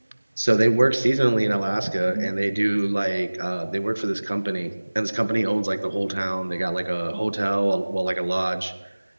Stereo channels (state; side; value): inverted; both; correlation -1.00